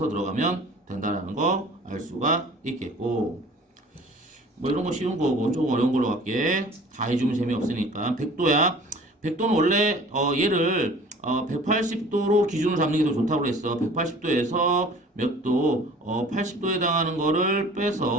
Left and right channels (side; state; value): both; normal; correlation 0.47